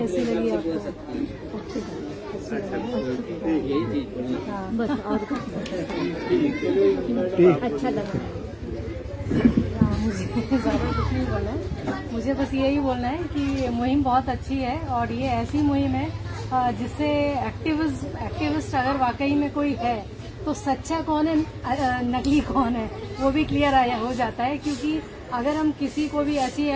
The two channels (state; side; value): identical; both; correlation 1.00